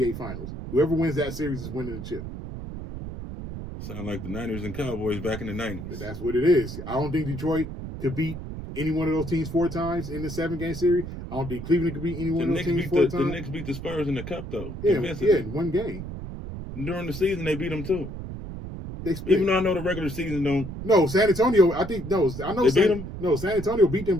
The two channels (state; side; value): noise; right; rumble, 8 dB below the sound